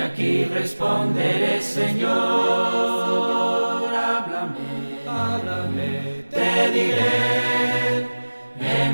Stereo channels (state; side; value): inverted; both; correlation -1.00